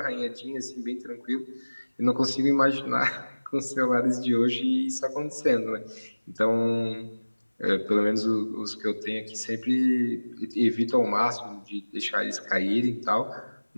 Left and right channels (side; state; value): both; inverted; correlation -1.00